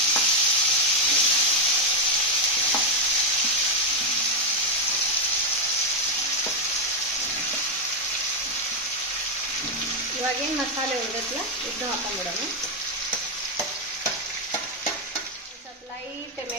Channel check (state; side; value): normal; both; correlation 0.02